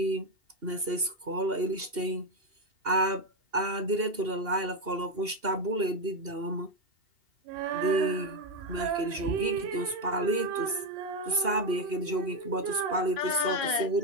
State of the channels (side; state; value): left; late; 2.8 ms